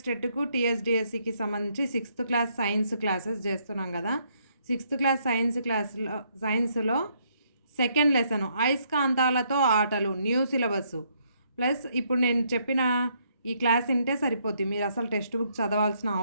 టెట్కు టీఎస్డిఎస్సికి సంబంధించి 6th class science classes చేస్తున్నాం కదా. 6th క్లాస్ సైన్స్లో సెకండ్ లెసన్ అయస్కాంతాలతో ఆటలు, న్యూ సిలబస్ ప్లస్ ఇప్పుడు నేను చెప్పిన ఈ క్లాస్ వింటే సరిపోద్ది. మీరు అసలు టెక్స్ట్ బుక్ చదవాల్సిన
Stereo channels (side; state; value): both; inverted; correlation -0.72